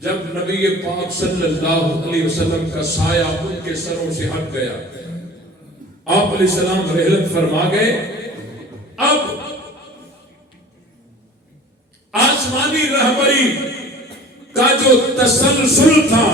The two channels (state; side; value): normal; both; correlation 0.43